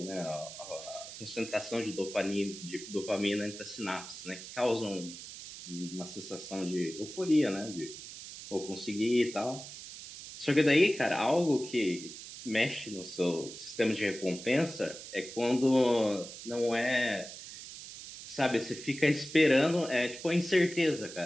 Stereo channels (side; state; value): right; noise; hiss, 12 dB below the sound